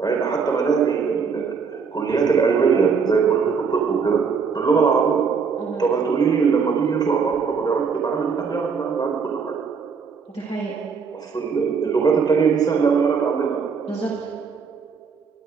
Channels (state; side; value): quieter; left; 5.7 dB